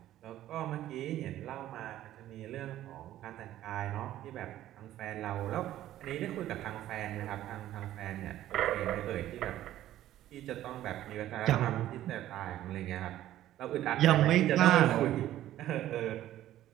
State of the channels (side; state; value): left; quieter; 13.3 dB